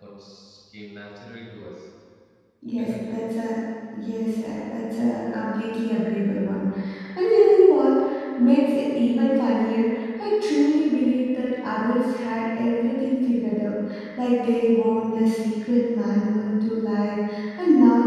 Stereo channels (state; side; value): identical; both; correlation 1.00